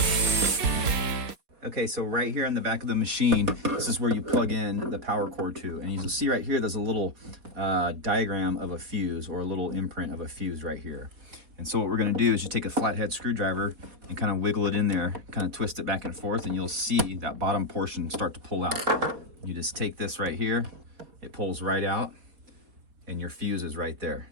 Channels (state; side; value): late; left; 4.2 ms